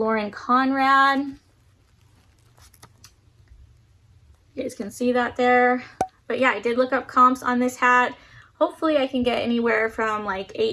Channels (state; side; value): identical; both; correlation 1.00